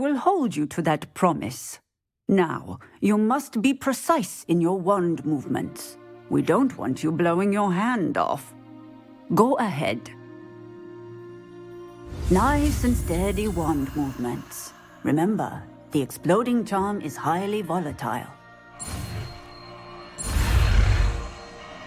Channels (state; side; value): identical; both; correlation 1.00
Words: hold you to that promise. Now, you must be precise in your wand movements. We don't want you blowing your hand off. Go ahead. Nice and steady wand movements. Remember, the exploding charm is highly volatile.